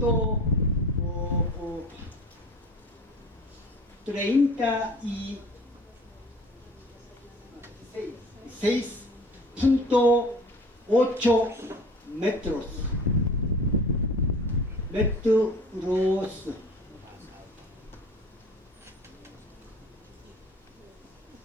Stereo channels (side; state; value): both; normal; correlation 0.44